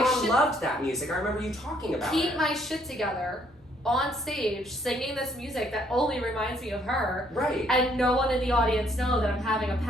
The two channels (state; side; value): normal; both; correlation 0.67